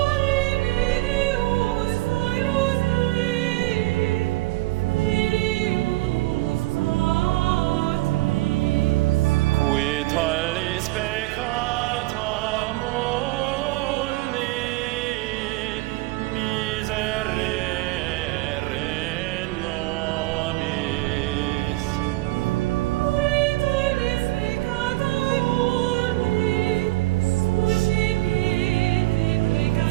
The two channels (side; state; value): left; quieter; 20.5 dB